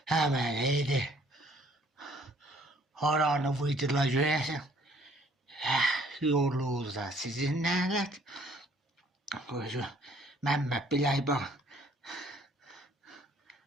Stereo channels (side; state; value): both; normal; correlation 0.60